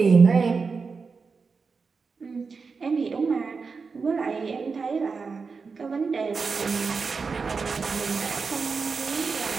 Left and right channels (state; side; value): quieter; left; 4.9 dB